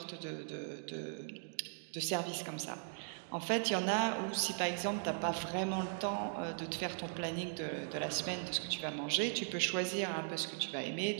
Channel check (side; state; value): left; silent; digital silence